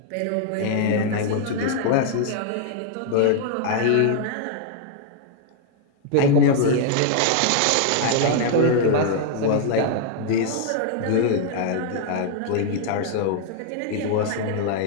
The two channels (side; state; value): both; different; correlation 0.00